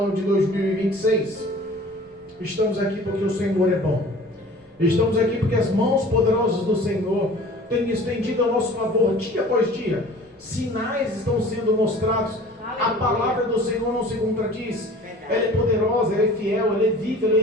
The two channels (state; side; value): normal; both; correlation 0.45